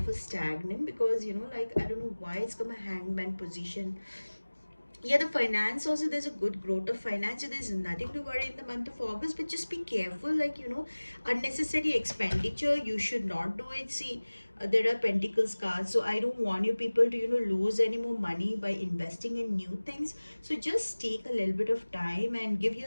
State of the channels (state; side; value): inverted; both; correlation -1.00